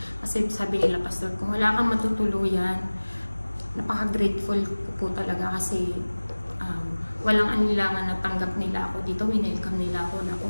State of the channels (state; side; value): inverted; both; correlation -1.00